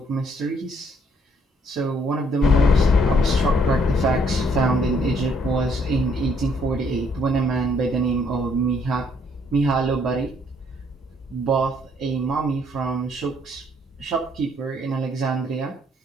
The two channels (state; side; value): normal; both; correlation 0.67